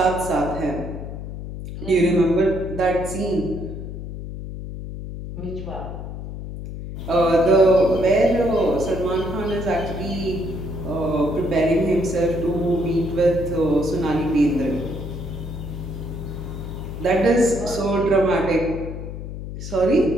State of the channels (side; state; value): left; noise; hum, 8 dB below the sound